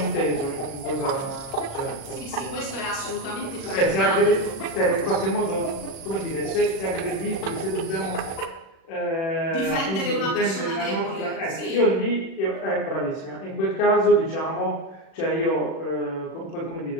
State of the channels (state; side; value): late; right; 36 ms